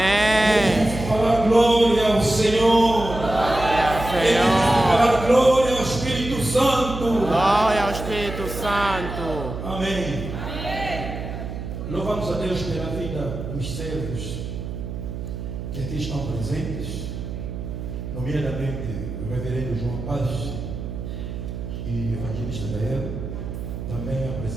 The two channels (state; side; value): noise; right; hum, 7 dB below the sound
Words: difícil falar glória ao Senhor. É difícil falar glória ao Espírito Santo. Glória ao Espírito Santo. Amém. Louvamos a Deus pela vida dos servos que aqui estão presentes, nomeadamente o reverendo João Paz e o evangelista Gael, também a